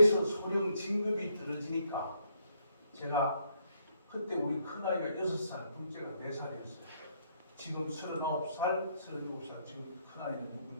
소령 진급이 떨어지니까 제가 그때 우리 큰아이가 6살, 둘째가 4살이었어요. 지금 39살, 37살, 지금 큰아이는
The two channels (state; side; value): inverted; both; correlation -0.72